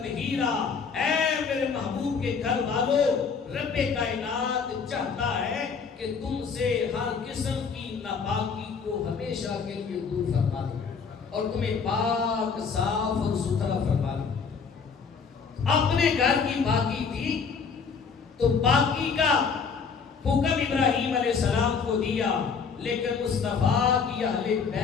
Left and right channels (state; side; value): quieter; right; 5.7 dB